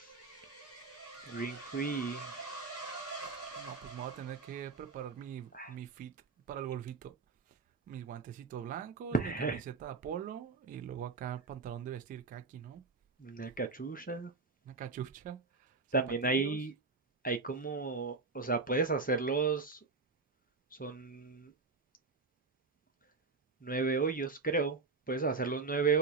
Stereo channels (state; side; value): quieter; left; 4.3 dB